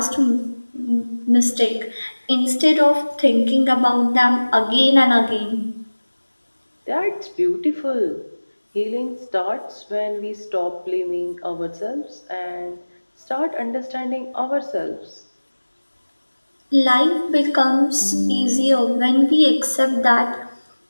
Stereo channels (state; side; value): inverted; both; correlation -1.00